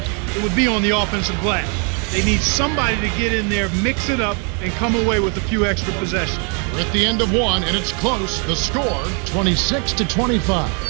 it would be on the offensive glass. They need somebody to get in there, mix it up, and come away with a few extra possessions. We're at the end of one, and it's close. The score, 26-25.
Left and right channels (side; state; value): left; quieter; 37.1 dB